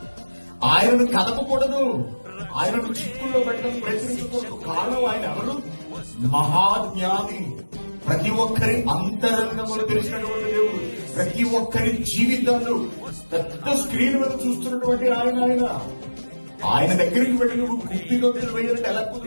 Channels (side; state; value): both; inverted; correlation -1.00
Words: ఆయనను కదపకూడదు, ఆయనను చిక్కుల్లో పెట్టడం ప్రయత్నించకూడదు. కారణం ఆయన ఎవరు? మహాజ్ఞాని, ప్రతి ఒక్కరి అంతరంగములు తెలిసినటువంటి దేవుడు, ప్రతి ఒక్కరి జీవితాలు పెద్ద స్క్రీన్ మీద చూస్తున్నటువంటి ఆయన దగ్గరికి వెళ్ళి నువ్వు గుడ్డిలో వేయాలంటే ఎలా